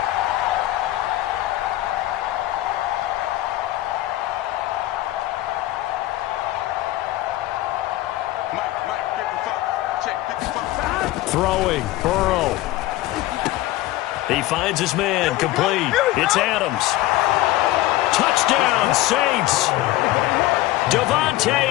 Throwing, Burrow. He finds his man, complete. It's Adams. Touchdown, Saints. Davante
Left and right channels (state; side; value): quieter; right; 16.5 dB